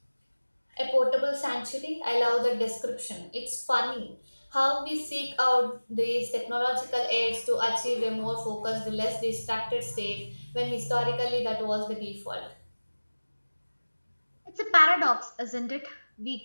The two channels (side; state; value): both; inverted; correlation -1.00